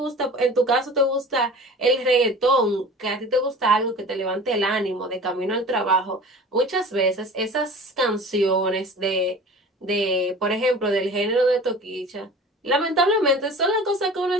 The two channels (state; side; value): normal; both; correlation 0.41